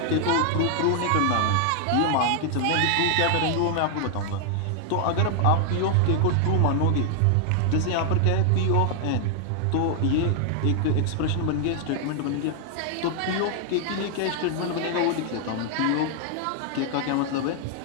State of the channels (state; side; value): different; both; correlation 0.00